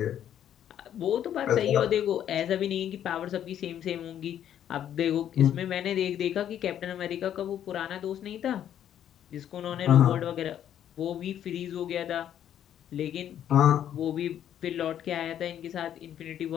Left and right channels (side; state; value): right; quieter; 10.3 dB